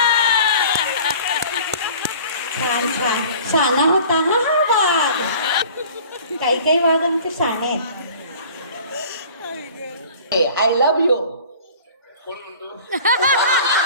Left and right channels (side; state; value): both; inverted; correlation -0.46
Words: छान छान शाना होता हा हा वाघ. काही काही वाघ आमचे शाणे आहेत. I love you. कोण म्हणतो?